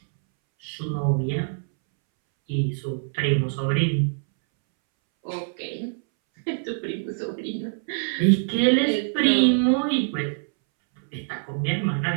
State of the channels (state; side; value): silent; left; 62 dB below the other